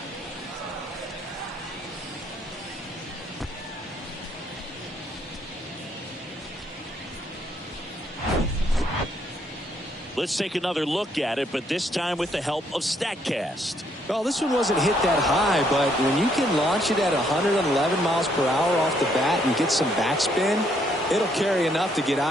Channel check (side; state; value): both; normal; correlation 0.70